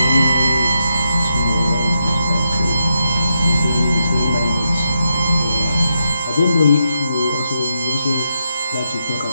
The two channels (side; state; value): both; inverted; correlation -0.83